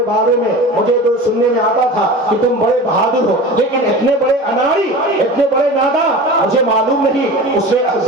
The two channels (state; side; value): normal; both; correlation 0.34